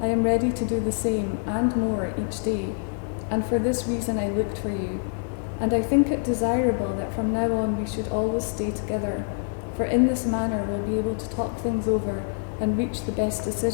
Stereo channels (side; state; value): right; silent; digital silence